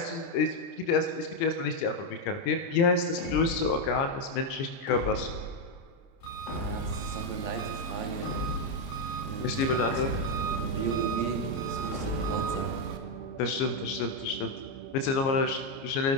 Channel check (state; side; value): late; right; 30 ms